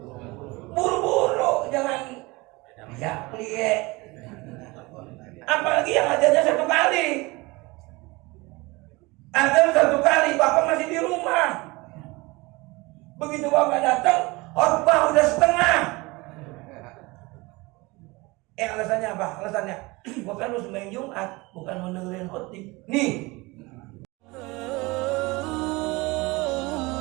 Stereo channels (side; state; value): left; quieter; 23.6 dB